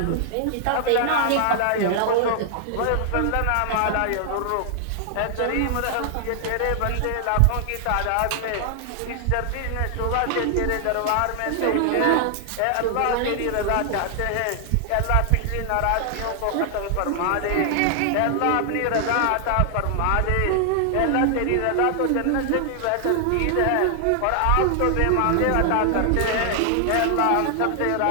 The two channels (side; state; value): both; different; correlation 0.00